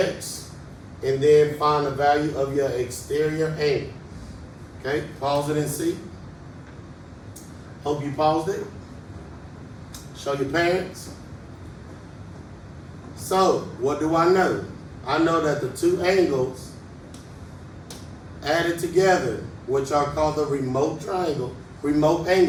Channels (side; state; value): both; identical; correlation 1.00